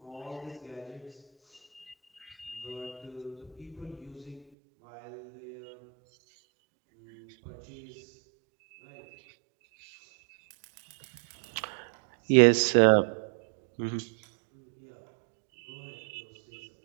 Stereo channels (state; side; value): drops out; left; at 4.5 s